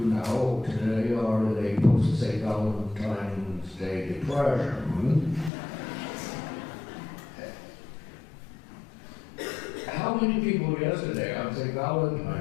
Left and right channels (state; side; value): drops out; right; at 5.5 s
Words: now today are in a post-St. Valentine's Day depression. How many people yesterday on St.